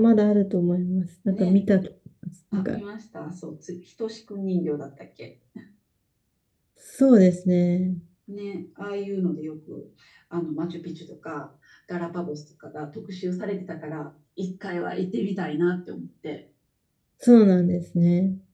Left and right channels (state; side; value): identical; both; correlation 1.00